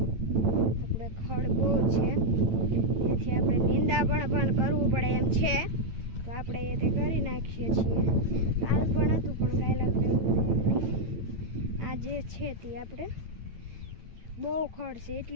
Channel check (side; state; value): left; late; 9.0 ms